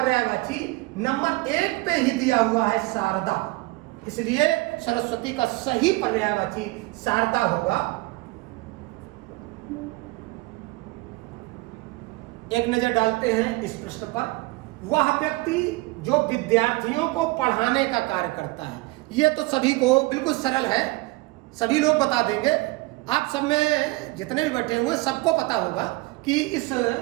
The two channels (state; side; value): quieter; left; 22.1 dB